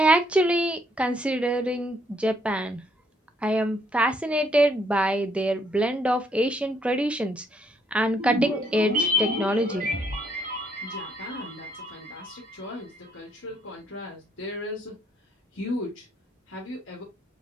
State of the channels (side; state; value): both; normal; correlation 0.70